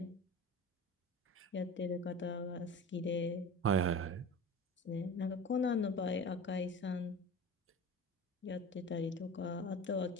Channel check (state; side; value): normal; both; correlation 0.33